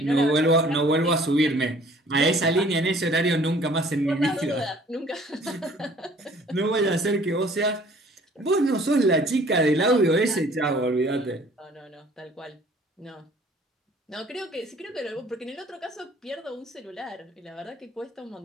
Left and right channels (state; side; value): normal; both; correlation 0.54